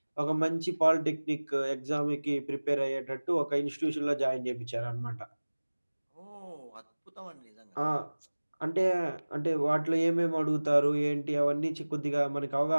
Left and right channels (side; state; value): both; inverted; correlation -1.00